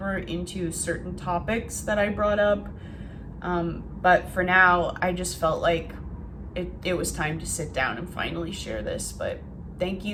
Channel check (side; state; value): both; identical; correlation 1.00